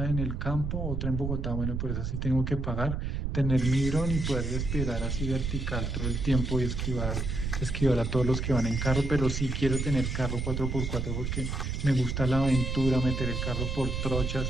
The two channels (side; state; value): right; noise; rumble, 2 dB below the sound